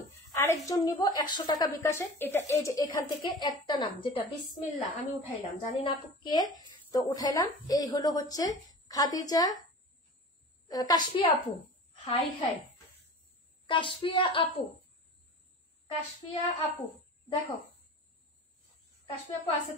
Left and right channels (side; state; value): both; normal; correlation 0.37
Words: আরেকজন নিব 100 টাকা বিকাশে। এটা এই যে এখান থেকে একটা নাম, যেটা বিসমিল্লাহ, আমি উঠাইলাম, জানি না আপু কে, তো উঠাইলাম। এই হলো হচ্ছে খাদিজা কাশফিয়া আপু। হাই হাই কাশফিয়া আপু, কাশফিয়া আপু দেখো, কাশফিয়া আপু আছে